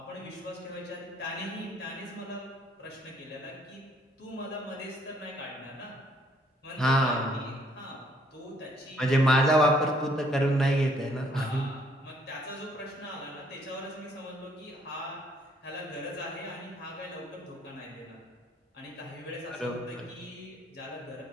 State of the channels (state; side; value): normal; both; correlation 0.65